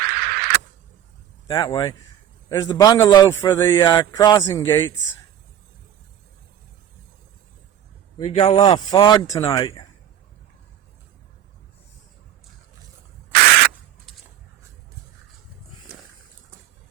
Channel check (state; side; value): quieter; left; 10.6 dB